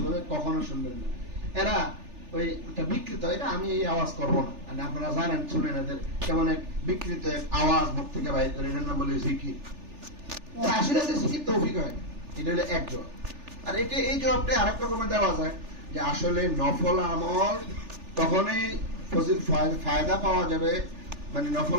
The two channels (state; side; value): late; left; 3.4 ms